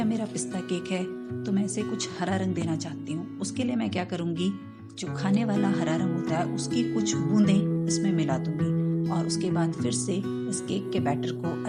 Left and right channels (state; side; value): identical; both; correlation 1.00